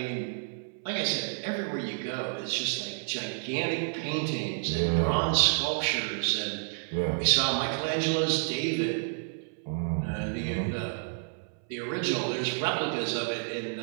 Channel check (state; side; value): silent; left; 58 dB below the other